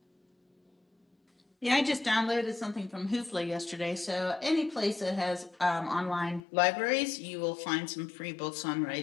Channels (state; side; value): drops out; right; at 6.4 s